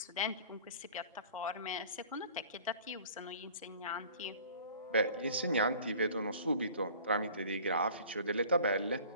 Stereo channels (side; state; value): both; inverted; correlation -0.46